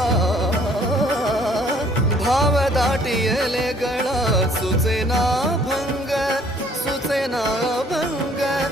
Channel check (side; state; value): both; normal; correlation 0.59